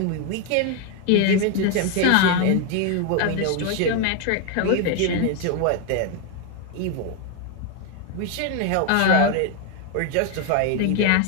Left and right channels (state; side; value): different; both; correlation 0.01